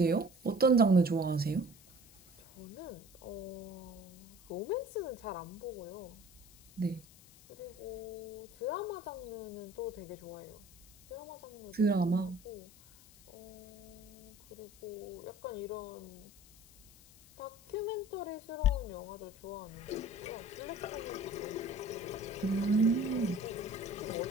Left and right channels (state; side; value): noise; left; hiss, 23 dB below the sound